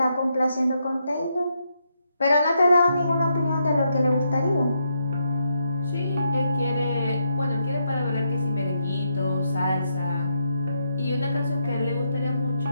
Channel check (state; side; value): inverted; both; correlation -0.80